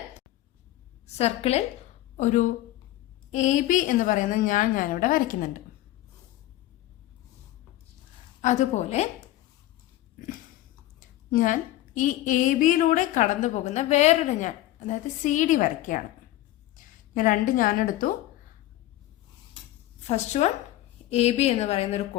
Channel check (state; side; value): quieter; right; 15.1 dB